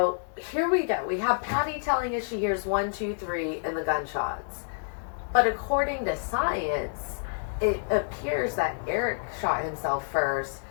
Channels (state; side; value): silent; right; digital silence